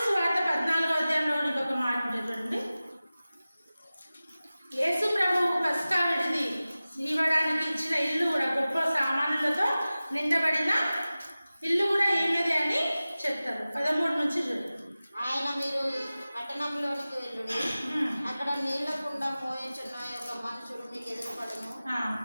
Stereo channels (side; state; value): both; inverted; correlation -0.97